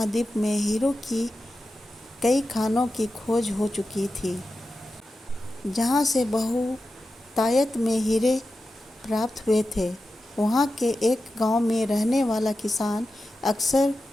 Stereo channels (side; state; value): both; normal; correlation 0.92